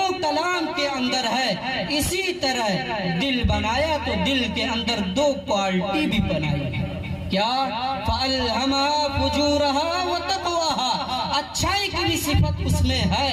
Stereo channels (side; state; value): both; identical; correlation 1.00